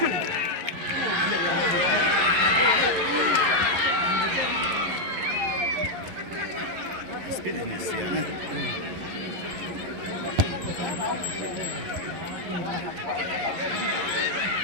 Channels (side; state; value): left; late; 11 ms